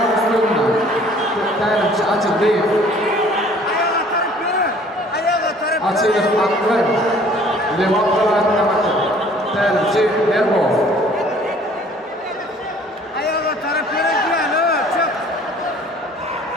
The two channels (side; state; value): both; normal; correlation 0.54